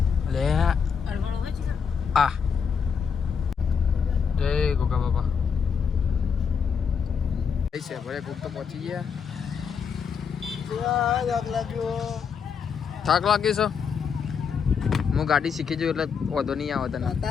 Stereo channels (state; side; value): quieter; right; 6.5 dB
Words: લે આ જય ગોગા બાબા છે ભલે કુક તો પહોંચી ગયા થાક લાગી છે હું ગાડી શીખી જઉં એટલે વાંધો નહીં આવે તને